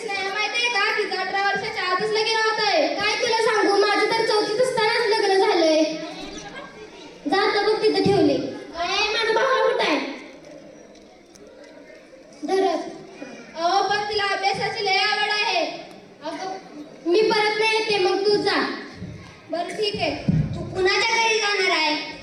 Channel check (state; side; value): identical; both; correlation 1.00